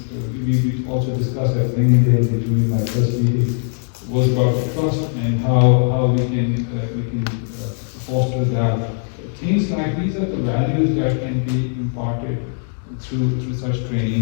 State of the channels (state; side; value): silent; right; 58 dB below the other